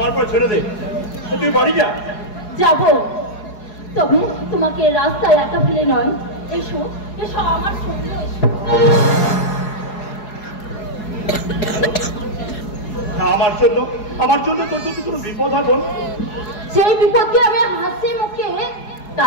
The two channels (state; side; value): late; right; 4.8 ms